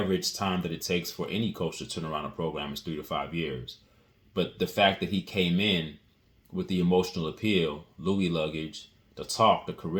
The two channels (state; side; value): identical; both; correlation 1.00